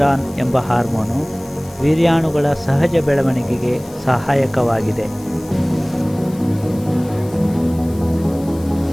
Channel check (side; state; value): left; noise; hiss, 22 dB below the sound